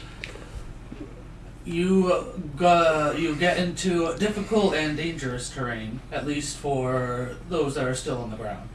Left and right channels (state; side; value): identical; both; correlation 1.00